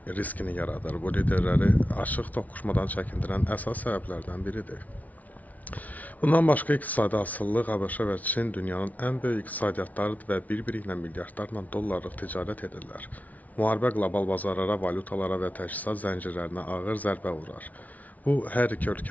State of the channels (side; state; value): right; late; 0.073 ms